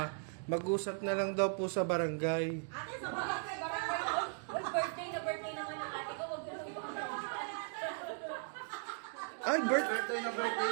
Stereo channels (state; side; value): silent; left; 53 dB below the other